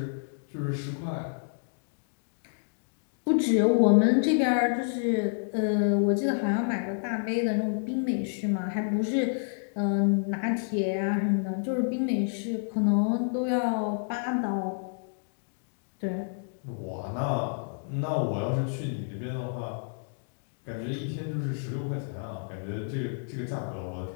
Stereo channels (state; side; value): silent; right; digital silence